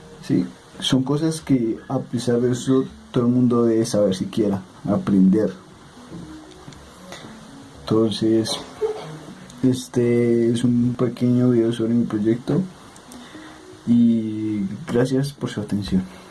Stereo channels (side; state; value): both; identical; correlation 1.00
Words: ¿sí? Son cosas que, a pesar de eso, todo el mundo debe saber siquiera, aprender. Entonces, este es un pequeño video sobre mi proyecto y gracias por su atención.